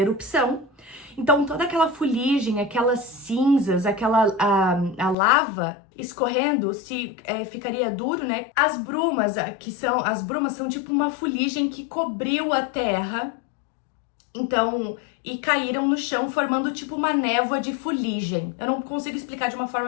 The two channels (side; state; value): right; drops out; at 5.2 s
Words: então toda aquela fuligem, aquelas cinzas, a lava escorrendo se ficaria duro, né? As brumas são tipo uma fuligem que cobriu a Terra. Então, e caíram no chão formando tipo uma névoa de fuligem. Eu não consigo explicar de uma forma